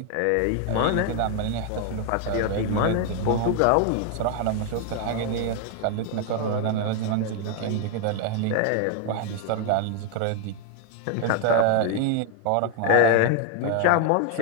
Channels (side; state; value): both; different; correlation 0.01